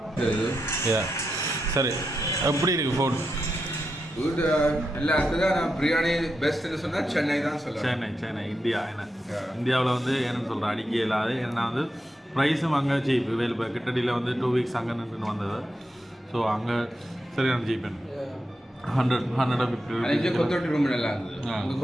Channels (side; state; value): both; normal; correlation 0.86